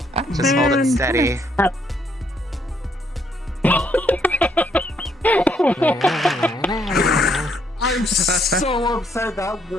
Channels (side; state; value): both; normal; correlation 0.71